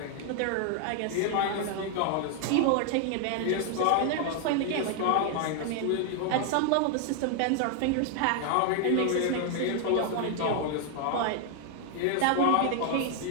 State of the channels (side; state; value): both; different; correlation 0.00